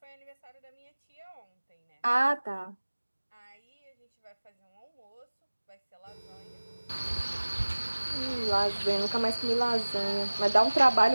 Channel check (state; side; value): inverted; both; correlation -1.00